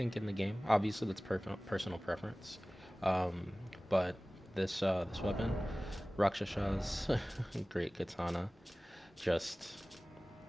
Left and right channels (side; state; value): both; normal; correlation 0.98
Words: in the game, obviously that's personal preference. Um, but this weapon, Rakshasha's Great Katana, just